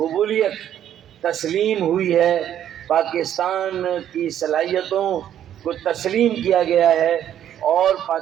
تسلیم ہوئی ہے، پاکستان کی صلاحیتوں کو تسلیم کیا گیا ہے، اور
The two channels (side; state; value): left; quieter; 10.6 dB